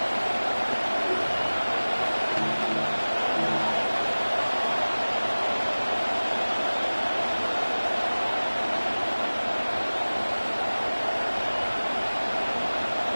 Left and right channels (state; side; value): inverted; both; correlation -1.00